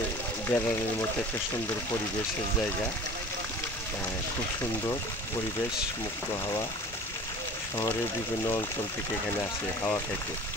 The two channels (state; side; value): normal; both; correlation 0.42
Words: বেড়ানোর মতো একটা সুন্দর পরিবেশের জায়গা। খুব সুন্দর পরিবেশ, মুক্ত হাওয়া। শহরের বিভিন্ন অঞ্চল থেকে এখানে আসে হাওয়া খাইতে।